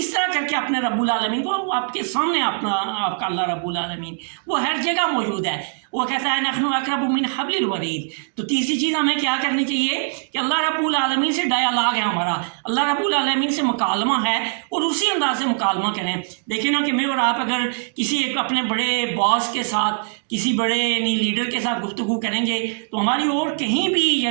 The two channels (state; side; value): silent; left; digital silence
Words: طرح کر کے اپنے رب العالمین کو آپ کے سامنے آپ کا اللہ رب العالمین وہ ہر جگہ موجود ہے، وہ کہتا ہے نحن اقرب من حبل الورید۔ تو تیسری چیز ہمیں کیا کرنی چاہیے کہ اللہ رب العالمین سے ڈائیلاگ ہے ہمارا، اللہ رب العالمین سے مکالمہ ہے، اور اسی انداز سے مکالمہ کریں۔ دیکھیں نا کہ میں اور آپ اگر کسی ایک اپنے بڑے باس کے ساتھ، کسی بڑے یعنی لیڈر کے ساتھ گفتگو کریں گے تو ہماری اور کہیں بھی